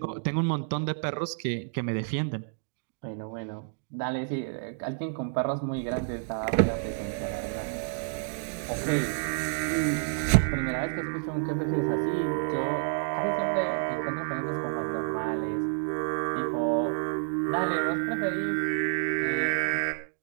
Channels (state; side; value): silent; left; digital silence